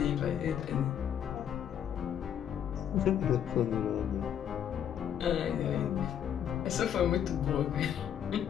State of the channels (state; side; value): quieter; right; 9.3 dB